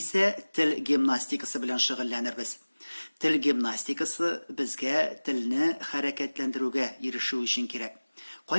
тел гимнастикасы белән шөгыльләнербез. Тел гимнастикасы безгә телне хәрәкәтләндерүгә ирешү өчен кирәк.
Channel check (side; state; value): both; inverted; correlation -1.00